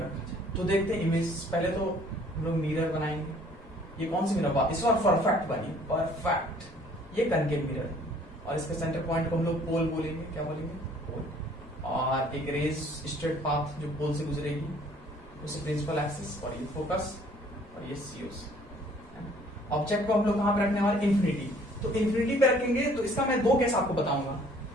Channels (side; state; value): both; normal; correlation 0.57